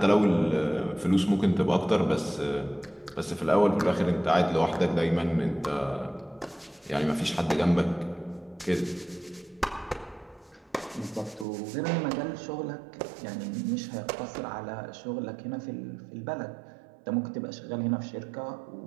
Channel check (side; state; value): left; drops out; at 11.5 s